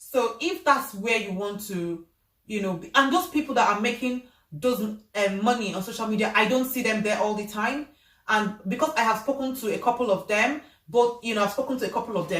if that's where you want to, you know, and those people that are making those money on social media, I don't see them there all the time. And because I have spoken to a couple of them,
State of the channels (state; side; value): identical; both; correlation 1.00